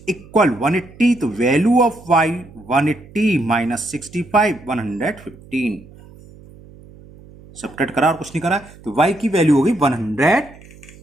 इक्वल 180, तो वैल्यू ऑफ y 180 - 65 115। सबट्रैक्ट करा और कुछ नहीं करा, तो y की वैल्यू हो गई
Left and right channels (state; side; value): noise; right; hum, 22 dB below the sound